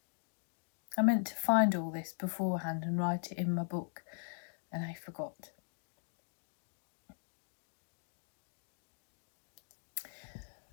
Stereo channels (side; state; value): right; silent; digital silence